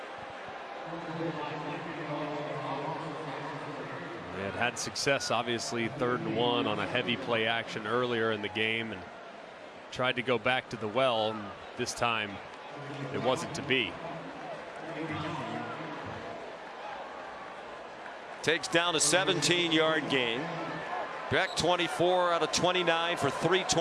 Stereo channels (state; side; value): identical; both; correlation 1.00